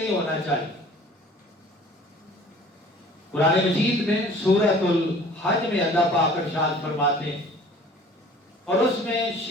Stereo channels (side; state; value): both; normal; correlation 0.49